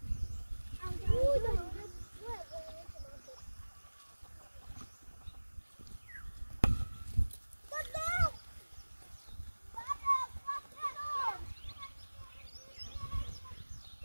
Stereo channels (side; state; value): both; inverted; correlation -1.00